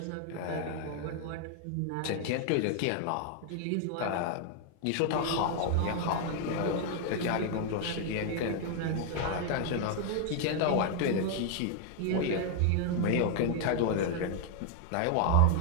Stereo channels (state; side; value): different; both; correlation 0.00